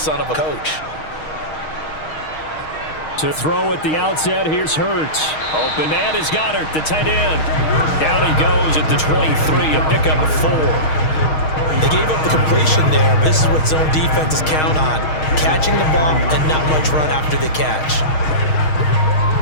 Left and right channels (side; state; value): right; late; 6.4 ms